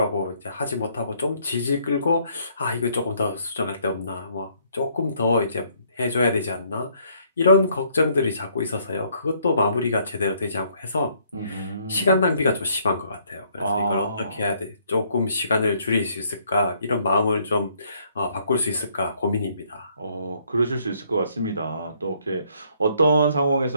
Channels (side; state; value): both; inverted; correlation -0.67